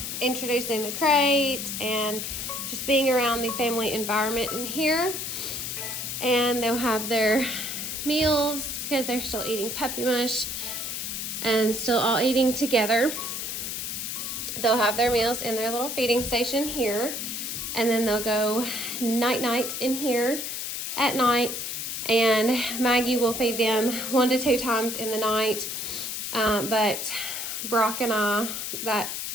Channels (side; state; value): left; noise; hiss, 4 dB below the sound